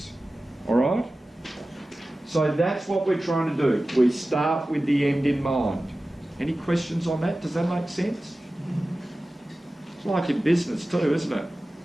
All right? So that's what we're trying to do. We start with the end in mind. Any questions on that? Does that make sense? It's like in business too, isn't it?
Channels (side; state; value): both; normal; correlation 0.96